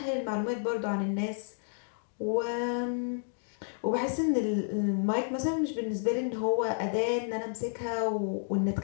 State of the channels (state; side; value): silent; right; digital silence